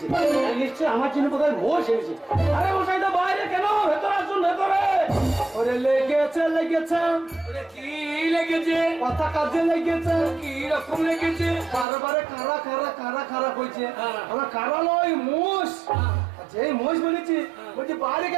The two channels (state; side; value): drops out; left; at 11.9 s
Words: নিশ্চয় আমার জন্য কোথায় মোষ এসেছে আরে মশাই তো বাইরে কেন ভেতরে আসুন ভেতরে ওরে লেগেছে কি লেগেছে কথা কাজে লেগেছে কি রকম লেগেছে বারে কারা কইছে আমরা কারা নয় মোষ যে মোষ বলেছি বলছি বাইরে